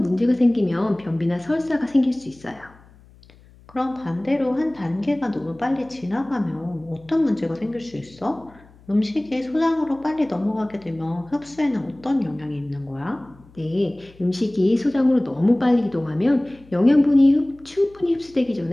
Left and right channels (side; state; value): left; noise; hum, 26 dB below the sound